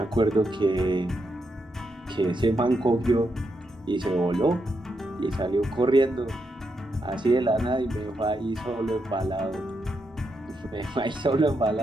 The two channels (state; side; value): normal; both; correlation 0.82